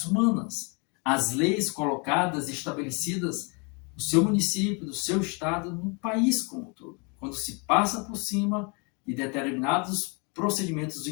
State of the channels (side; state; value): right; quieter; 33.0 dB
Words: humanas, as leis colocadas e estabelecidas no seu município, no seu estado, no país como um todo. Quando se passa por cima de determinados procedimentos